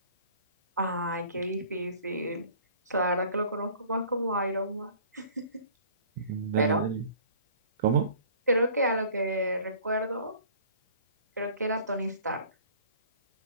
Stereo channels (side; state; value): both; inverted; correlation -0.50